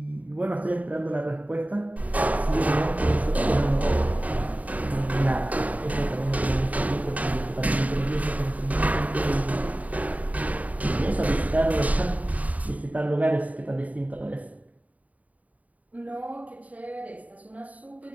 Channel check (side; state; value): left; late; 0.071 ms